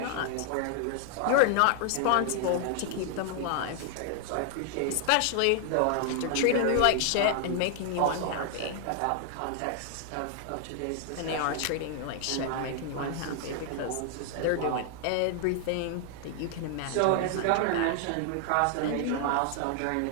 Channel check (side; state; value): both; different; correlation 0.00